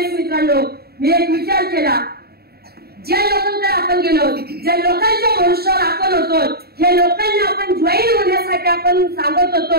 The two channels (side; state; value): left; late; 0.46 ms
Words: मित्रांनो मी एक विचार केला, ज्या लोकांकडे आपण गेलो, ज्या लोकांच्या भरोश्यावर आपण होतो, हे लोकांना आपण जॉईन होण्यासाठी आपण सांगत